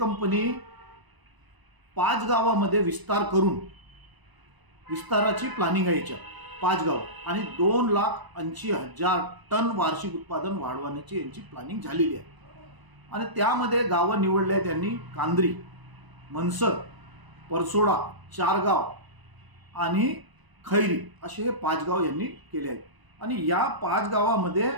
5 गावामध्ये विस्तार करून, विस्ताराची प्लॅनिंग आहे याच्यात 5 गाव, आणि 2,80,000 टन वार्षिक उत्पादन वाढवण्याची यांची प्लॅनिंग झालेली आहे. आणि त्यामध्ये गावं निवडले आहेत त्यांनी कांद्री, मनसर, परसोडा 4 गाव आणि खैरी असे हे 5 गाव यांनी केले आहेत. आणि या 5 गावामध्ये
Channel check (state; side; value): late; left; 1.0 ms